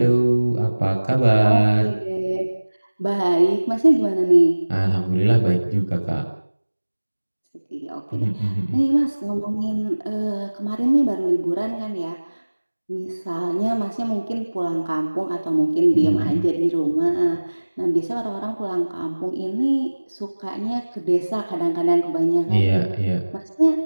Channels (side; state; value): both; inverted; correlation -1.00